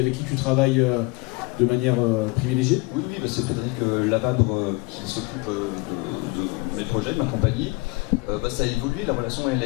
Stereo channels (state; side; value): quieter; right; 25.5 dB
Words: qui tu travailles de manière privilégiée? Oui, c'est Frédéric Lavabre qui s'occupe de mes projets, de ma compagnie. Ça a évolué, la relation elle a